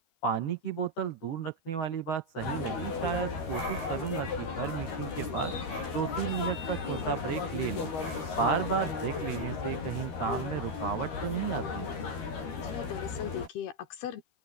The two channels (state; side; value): late; right; 13 ms